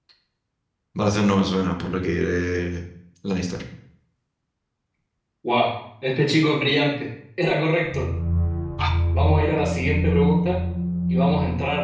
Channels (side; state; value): both; identical; correlation 1.00